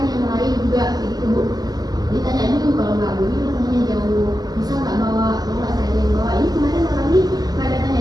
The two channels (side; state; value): left; late; 0.19 ms